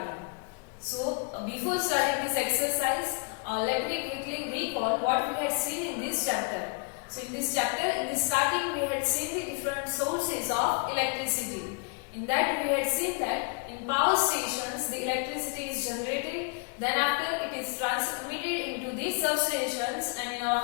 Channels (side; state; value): right; quieter; 36.2 dB